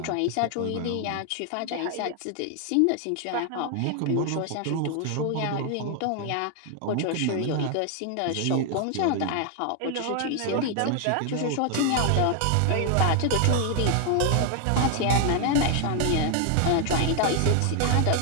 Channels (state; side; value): different; both; correlation 0.00